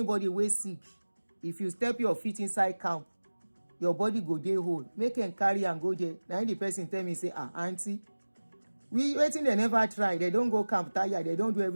wey sick, if you step your feet inside camp, your body go dey whole. Make them carry and go there. Now the person tell me say, auntie, we waiting they never try. They don't go camp tire. They don't do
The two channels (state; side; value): inverted; both; correlation -1.00